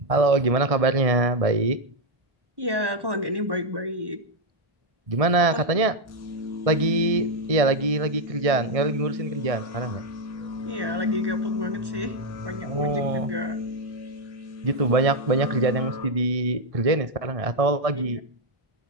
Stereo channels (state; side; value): late; left; 1.6 ms